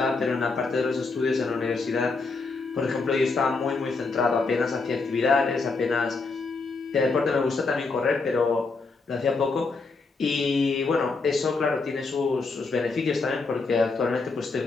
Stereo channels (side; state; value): right; quieter; 4.0 dB